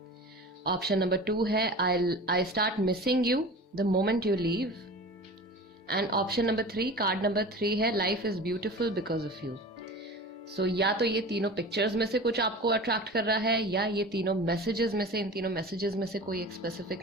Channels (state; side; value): normal; both; correlation 0.35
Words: Option number 2 है I start missing you the moment you leave. And option number 3, card number 3 है life is beautiful because of you. So या तो ये तीनों pictures में से कुछ आपको अट्रैक्ट कर रहा है, या ये तीनों मैसेजेस में से, इन तीनों मैसेजेस में से कोई एक